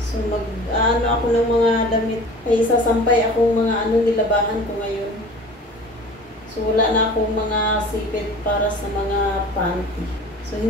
mag-ano ako ng mga damit. Ay sasampay akong mga nilabahan ko ngayon. So wala na akong mga sipit para sa mga panty. So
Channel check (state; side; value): normal; both; correlation 0.42